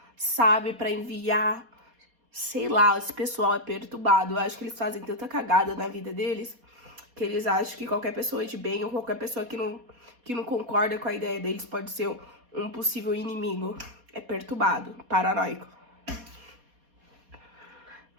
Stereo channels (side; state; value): left; late; 4.2 ms